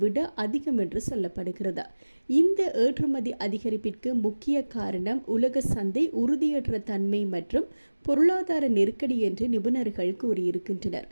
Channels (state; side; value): inverted; both; correlation -1.00